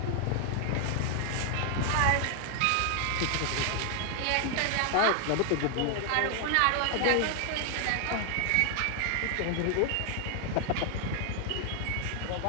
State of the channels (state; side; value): different; both; correlation 0.00